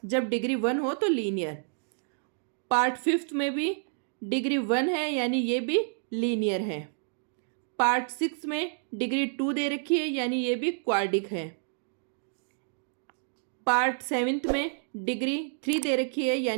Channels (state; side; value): silent; left; digital silence